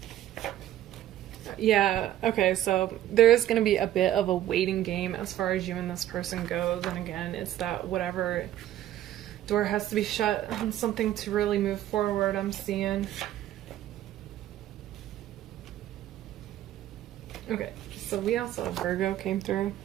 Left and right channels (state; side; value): quieter; left; 12.7 dB